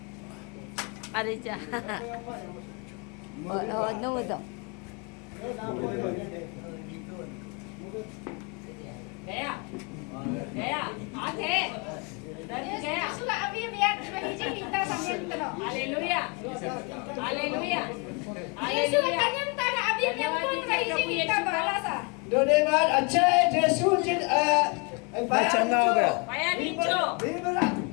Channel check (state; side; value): quieter; right; 32.4 dB